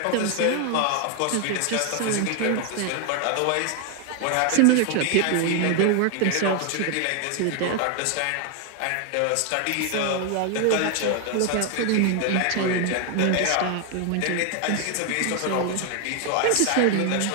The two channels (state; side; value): different; both; correlation 0.00